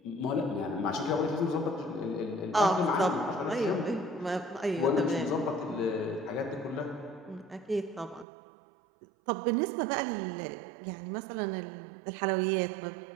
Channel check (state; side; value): drops out; left; at 8.2 s